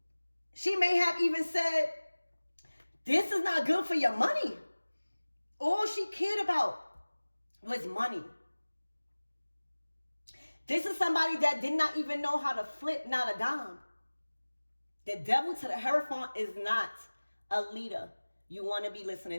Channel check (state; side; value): inverted; both; correlation -1.00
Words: She may have even said, this is not good for your money. All she cared about was money. This is somebody that did not even know how to flip, not a dime. The devil to the Hierophant is not a leader you want to be